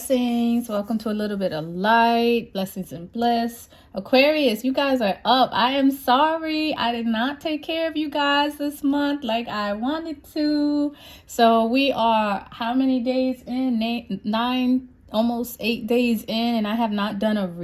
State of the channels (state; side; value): identical; both; correlation 1.00